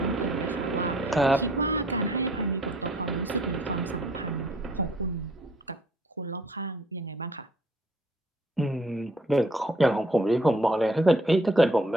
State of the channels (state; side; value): normal; both; correlation 0.61